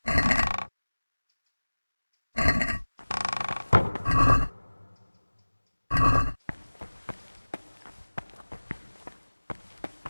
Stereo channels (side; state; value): both; inverted; correlation -1.00